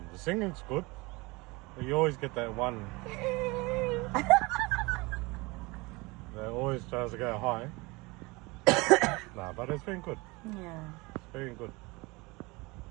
The singing's good. You always get that one that always tries to go high. Nah, but it's been good. Yeah. It's been good.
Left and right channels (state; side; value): quieter; left; 24.5 dB